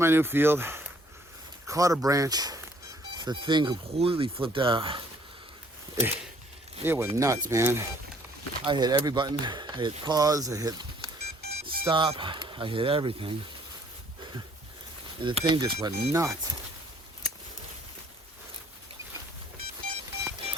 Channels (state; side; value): normal; both; correlation 0.61